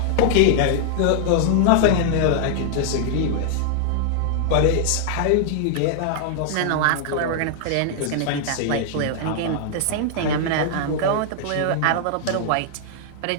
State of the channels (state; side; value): different; both; correlation -0.01